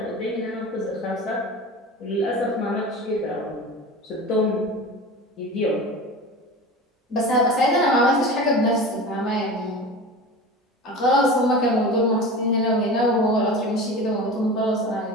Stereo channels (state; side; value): normal; both; correlation 0.32